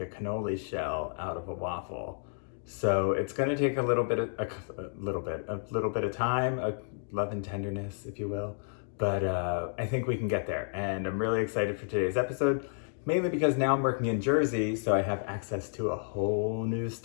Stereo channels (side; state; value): right; silent; digital silence